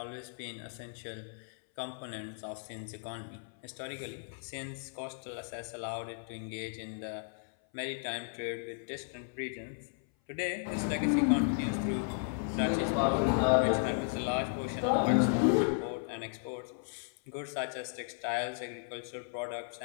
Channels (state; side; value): silent; right; 55 dB below the other